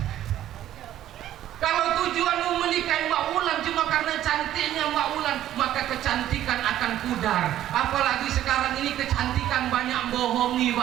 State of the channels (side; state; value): left; quieter; 12.5 dB